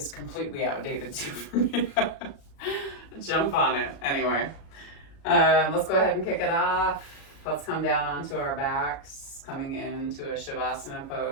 completely outdated too for me to jump on it. Anyway, let's go ahead and kick it off. Let's come down onto our backs, coming into a Shavasana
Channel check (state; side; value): late; right; 36 ms